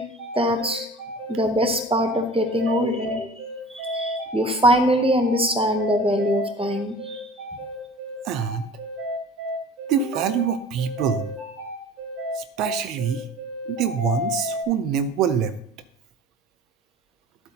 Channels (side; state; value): both; normal; correlation 0.43